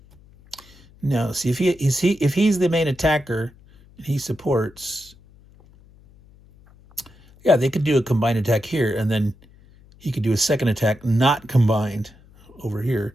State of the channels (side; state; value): left; noise; hum, 26 dB below the sound